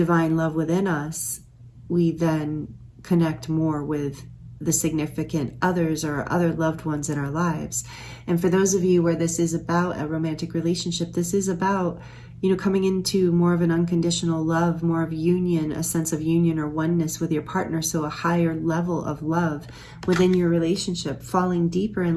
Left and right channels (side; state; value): both; identical; correlation 1.00